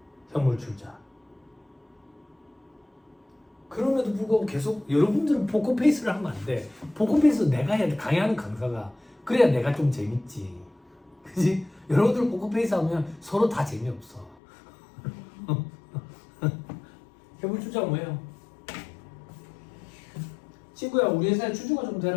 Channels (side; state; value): right; drops out; at 14.4 s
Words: 현물 출자. 그럼에도 불구하고 계속 여러분들은 포커페이스를 하면 안 돼. 포커페이스 내가 해야 돼. 강의하는 강사가. 그래야 내가 좀 재밌지. 그지? 여러분들 포커페이스 하면 서로 다 재미없어. 현물 출자가 뭐예요? 친구야, 우리 회사에 주주가 좀